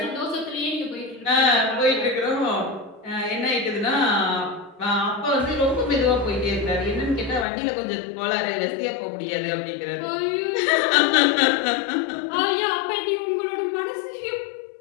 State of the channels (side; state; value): right; drops out; at 7.5 s